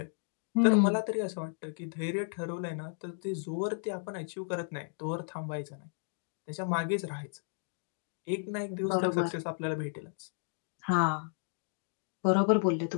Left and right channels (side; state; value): right; silent; digital silence